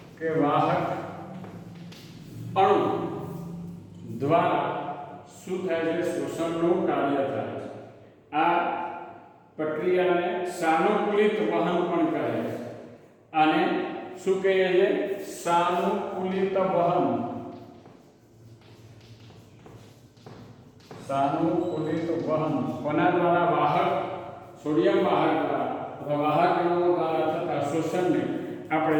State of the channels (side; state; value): both; identical; correlation 1.00